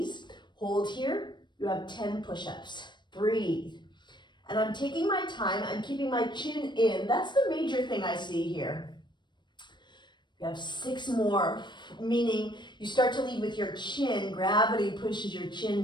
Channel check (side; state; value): right; late; 0.22 ms